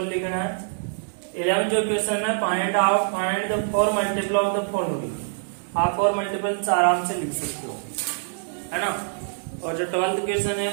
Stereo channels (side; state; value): left; silent; digital silence